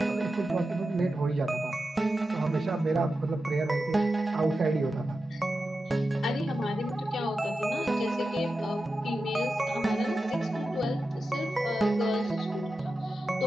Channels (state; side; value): normal; both; correlation 0.91